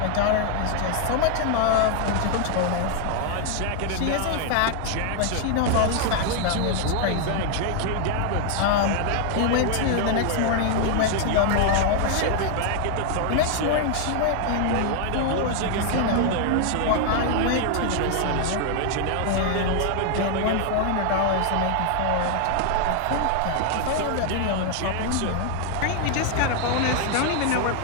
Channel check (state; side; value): different; both; correlation 0.00